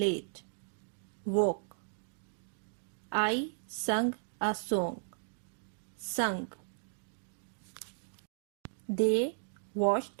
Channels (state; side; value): silent; left; digital silence